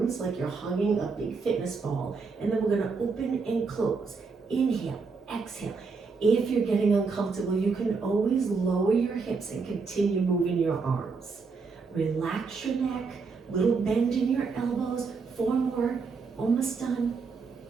like you're hugging a big fitness ball. And then we're gonna open and close. Inhale, exhale. If you're getting uncomfortable, you can always lower your hips and continue moving your arms. Relax your neck, little bend in your elbows. 4 more, almost done.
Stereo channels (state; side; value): quieter; left; 4.7 dB